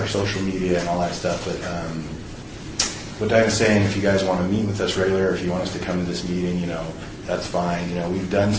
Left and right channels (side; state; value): both; identical; correlation 1.00